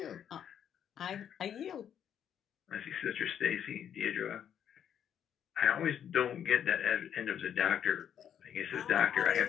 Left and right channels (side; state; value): right; quieter; 9.1 dB